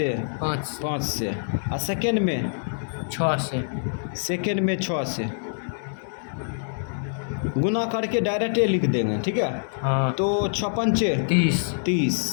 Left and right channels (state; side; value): silent; right; digital silence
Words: 5 से। और सेकेंड में 6 से, सेकेंड में 6 से। गुना करके डायरेक्ट लिख देंगे, ठीक है। तो 6 पंचे